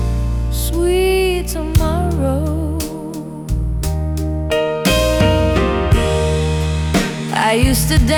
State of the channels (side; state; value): both; identical; correlation 1.00